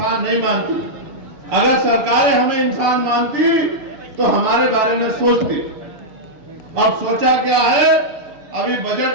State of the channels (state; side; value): late; left; 6.7 ms